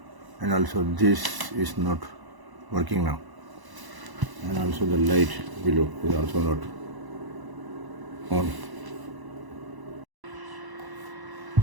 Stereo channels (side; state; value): left; late; 1.0 ms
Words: and also this is not working now, and also the light below is also not on.